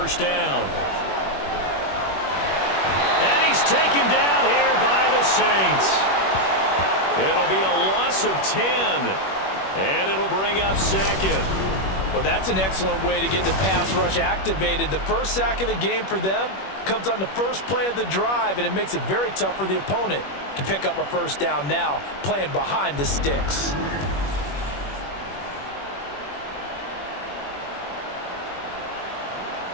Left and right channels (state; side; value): late; right; 21 ms